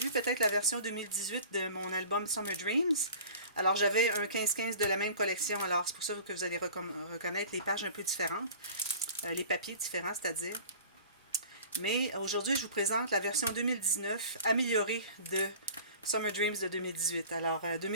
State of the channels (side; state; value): both; inverted; correlation -0.42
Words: peut-être la version 2018 de mon album Summer Dreams. Alors, j'avais un 15-15 de la même collection. Alors, c'est pour ça que vous allez reconnaître les pages un peu différentes. Les papiers différents, c'est-à-dire. Mais aujourd'hui, je vous présente la version 2019 améliorée de Summer Dreams de 2018. Alors,